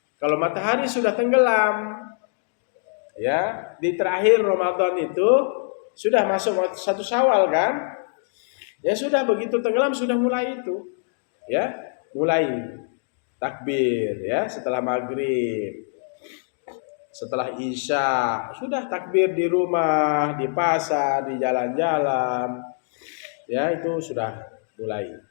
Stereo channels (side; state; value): right; silent; digital silence